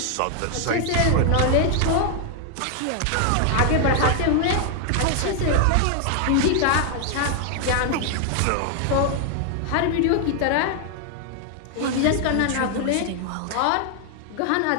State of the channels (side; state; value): both; different; correlation 0.00